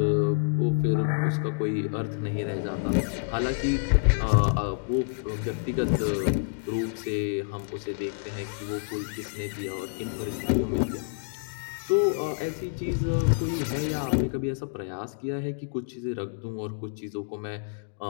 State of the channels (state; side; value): silent; right; digital silence